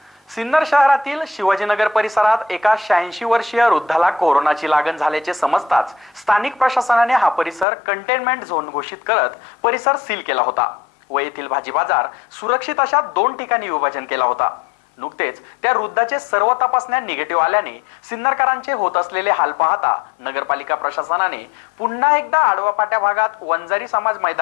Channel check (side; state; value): right; drops out; at 7.7 s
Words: सिन्नर शहरातील शिवाजीनगर परिसरात एका 86 वर्षीय वृद्धाला कोरोनाची लागण झाल्याचे समजताच स्थानिक प्रशासनाने हा परिसर कंटेनमेंट झोन घोषित करत परिसर सील केला होता व येथील भाजी बाजार सुरक्षित अशा 2 ठिकाणी विभाजन केला होता। नुकतेच त्या वृद्धाचे सर्व तपासण्या निगेटिव्ह आल्याने सिन्नरकरांचे होत असलेले हाल पाहता नगरपालिका प्रशासनाने पुन्हा एकदा आडवा पाट्या भागात वंजारी समाज